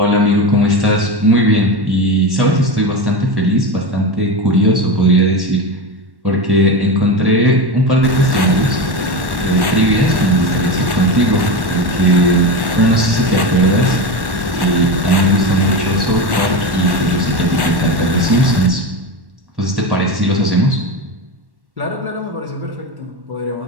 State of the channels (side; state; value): left; late; 1.1 ms